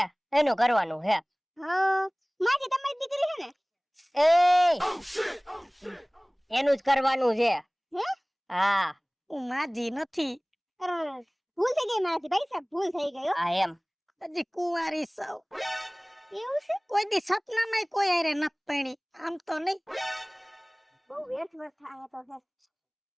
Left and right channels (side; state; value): both; identical; correlation 1.00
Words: એનું કરવાનું છે. હા માજી તમારી દીકરી છે ને? એનું જ કરવાનું છે. હે? હા હું માજી નથી, ભૂલ થઈ ગઈ મારાથી ભાઈ સાહેબ, ભૂલ થઈ ગઈ હો. હા એમ. હજી કુંવારી સૌ. એવું છે? કોઈ દી સપનામાં કોઈ હારે નત પૈણી, આમ તો નહીં. બહુ વ્યર્થ થાય તો છે.